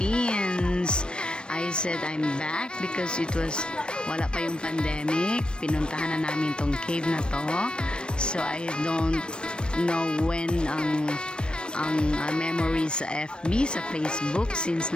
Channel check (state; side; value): late; right; 0.054 ms